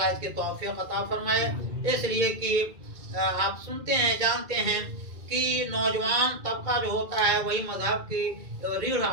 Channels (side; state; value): left; late; 2.3 ms